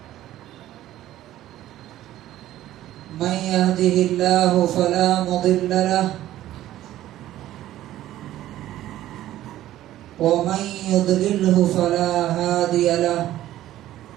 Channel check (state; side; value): quieter; left; 13.8 dB